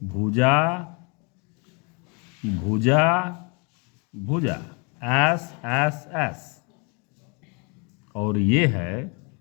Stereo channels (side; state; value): right; quieter; 33.2 dB